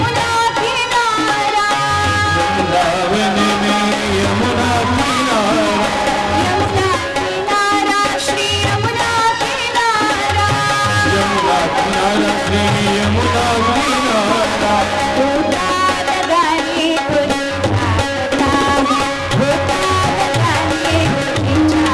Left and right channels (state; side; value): identical; both; correlation 1.00